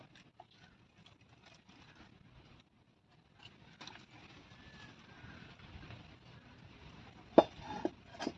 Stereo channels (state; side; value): identical; both; correlation 1.00